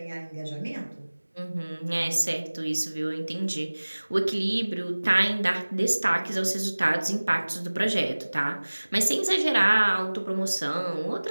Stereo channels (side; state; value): both; inverted; correlation -1.00